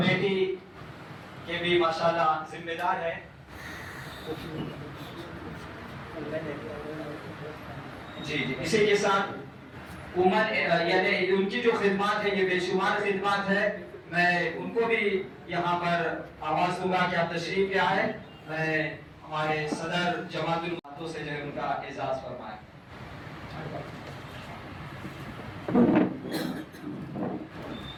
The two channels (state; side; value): identical; both; correlation 1.00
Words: کے بھی ماشاءاللہ ذمہ دار ہیں. جی اسی کے ساتھ یعنی ان کی جو خدمات ہے یہ بے شمار خدمات ہے. میں ان کو بھی یہاں پر آواز دوں گا کہ آپ تشریف لے آئے. میں ہمارے صدر جماعت الماتوں سے جو ہے ان کا اعزاز فرمائے.